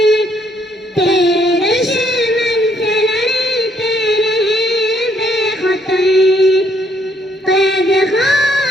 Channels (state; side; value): normal; both; correlation 0.69